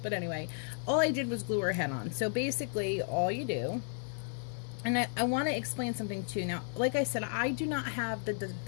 but anyway, all I did was glue her head on. So basically all you do, and I want to explain something too. Now, like I said, I do not have the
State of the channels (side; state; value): right; silent; 55 dB below the other